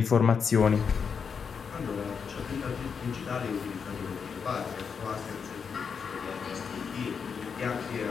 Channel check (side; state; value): right; quieter; 6.3 dB